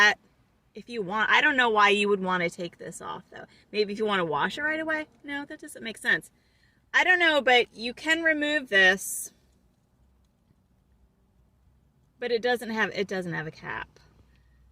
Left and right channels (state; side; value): identical; both; correlation 1.00